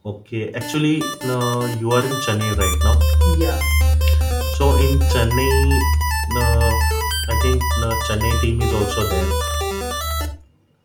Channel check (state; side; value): identical; both; correlation 1.00